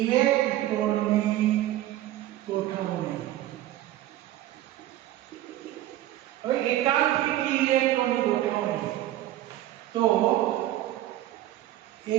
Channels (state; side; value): quieter; left; 14.1 dB